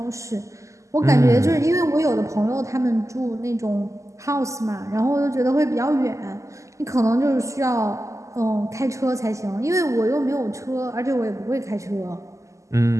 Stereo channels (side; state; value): left; late; 0.15 ms